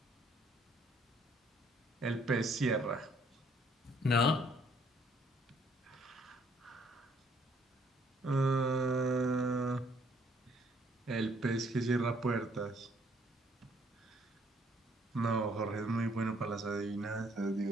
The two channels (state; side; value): normal; both; correlation 0.65